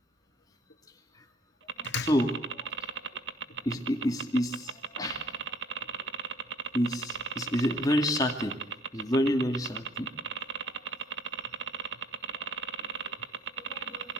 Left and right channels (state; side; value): normal; both; correlation 0.59